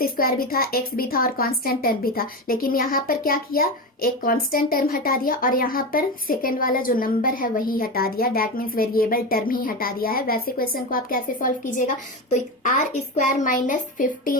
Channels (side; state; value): both; normal; correlation 0.20